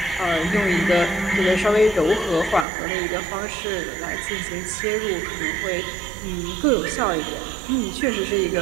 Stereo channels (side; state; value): left; drops out; at 2.7 s